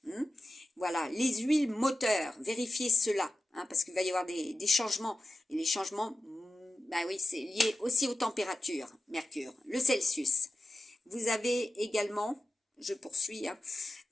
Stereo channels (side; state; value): both; normal; correlation 0.93